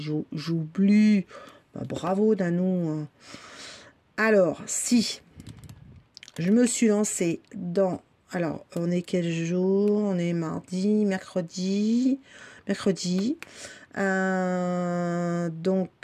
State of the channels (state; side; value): identical; both; correlation 1.00